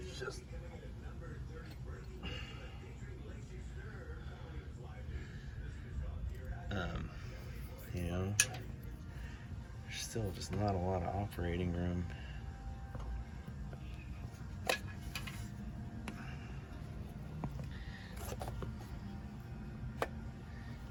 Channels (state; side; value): identical; both; correlation 1.00